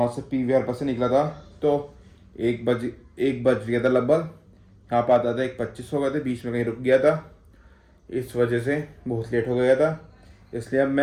से पीवीआर पर से निकला था। तो 1 बज गया था लगभग। यहाँ पर आता था 1:25 हो गए थे, बीच में कहीं रुक गया था। इस वजह से बहुत लेट हो गया था, इसलिए अब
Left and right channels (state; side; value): identical; both; correlation 1.00